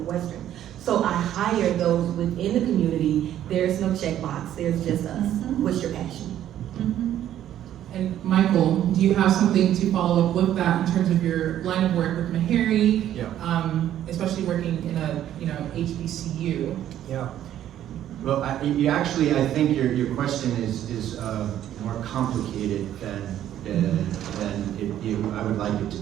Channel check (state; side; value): quieter; left; 11.5 dB